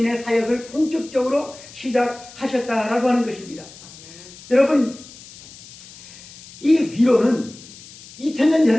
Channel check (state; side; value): noise; left; hiss, 19 dB below the sound